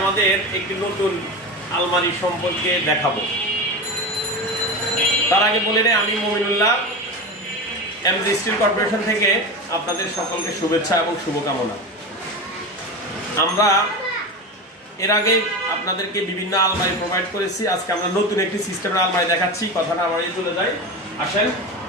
আমাদের একটি নতুন আলমারি সম্পর্কে দেখাবো। তার আগে বলে নেই, আমি মমিনুল্লাহ, এমজি স্টিল কর্পোরেশন থেকে আপনাদের সকলকে শুভেচ্ছা এবং শুভকামনা। আমরা এর আগে আপনাদেরকে বিভিন্ন আলমারি প্রোভাইড করেছি। আজকে আমরা নতুন একটি সিস্টেমের আলমারি দেখাচ্ছি। কথা না বাড়িয়ে চলে যাই, আসেন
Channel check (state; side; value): normal; both; correlation 0.24